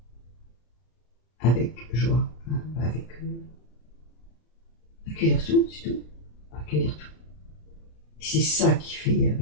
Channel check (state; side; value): late; right; 33 ms